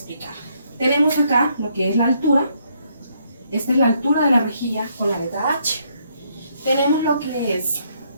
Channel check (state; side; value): inverted; both; correlation -0.72